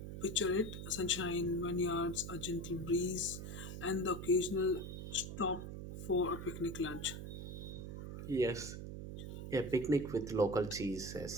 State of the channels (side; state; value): right; noise; hum, 7 dB below the sound